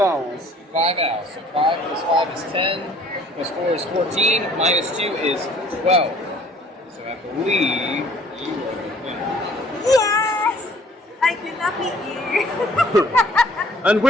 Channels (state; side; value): normal; both; correlation 0.56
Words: owls. 5 owls. So 5 plus 5 is 10, plus 4 is 14, minus 2 is 12. So I believe you are the winner. Yes! I could not beat you. And